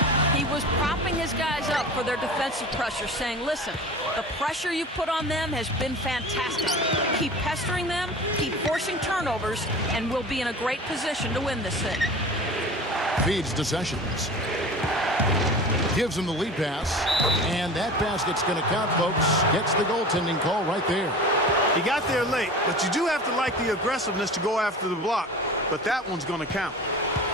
He was propping his guys up for their defensive pressure, saying, listen, the pressure you put on them has been fantastic. Keep pestering them, keep forcing turnovers, and we'll be in a great position to win this thing. Feeds to Sessions. Gives him the lead pass, and that basket's going to count, folks. Gets the goaltending call right there. He got there late, but you do have to like the aggressiveness to go after the block, but that one's going to count.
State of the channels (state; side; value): normal; both; correlation 0.36